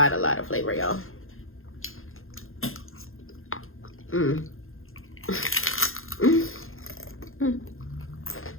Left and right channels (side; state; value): right; late; 0.61 ms